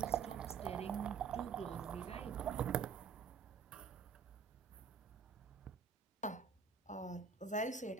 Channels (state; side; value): quieter; left; 6.0 dB